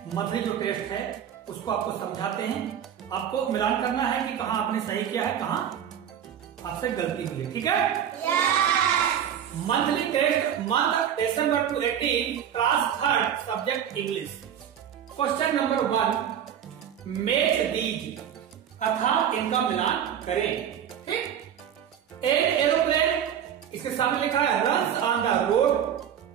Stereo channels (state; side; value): quieter; left; 9.2 dB